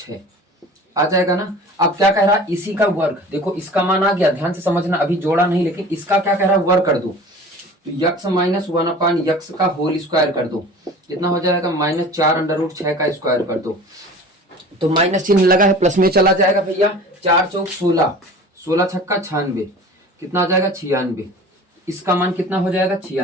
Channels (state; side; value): normal; both; correlation 0.41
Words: आ जाएगा ना। अब क्या कह रहा है, इसी का वर्ग, देखो इसका मान आ गया, ध्यान से समझना, अभी जोड़ा नहीं, लेकिन इसका क्या कह रहा है, वर्ग कर दो। तो यक्स माइनस 1/x का होल स्क्वायर कर दो, कितना हो जाएगा -4 √6 का स्क्वायर कर दो। तो माइनस चिन्ह लगा है, प्लस में चला जाएगा भैया, 4 चौक 16, 16 छक्का 96, कितना आ जाएगा 96। इसका मान कितना हो जाएगा